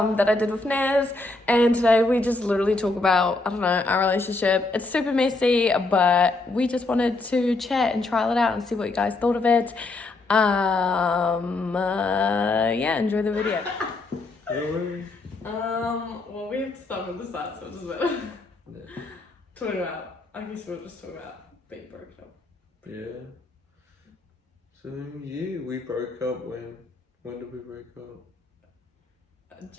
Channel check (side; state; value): right; quieter; 3.2 dB